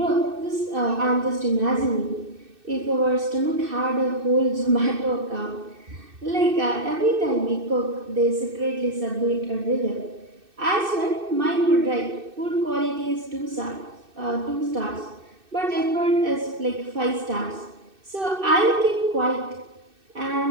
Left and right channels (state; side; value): late; left; 2.6 ms